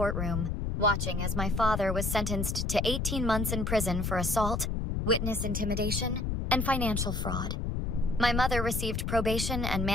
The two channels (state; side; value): noise; left; rumble, 1 dB below the sound